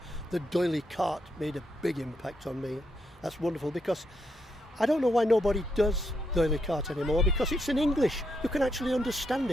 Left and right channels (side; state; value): both; normal; correlation 0.79